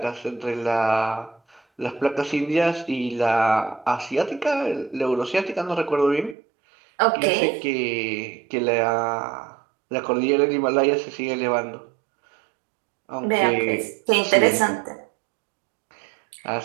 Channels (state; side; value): drops out; left; at 6.4 s